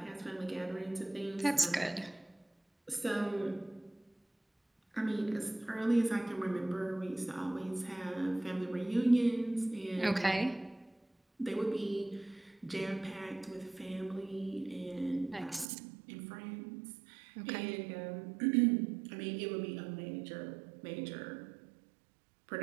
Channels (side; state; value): left; drops out; at 15.7 s